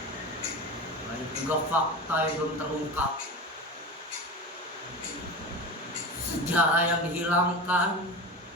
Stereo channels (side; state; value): both; normal; correlation 0.27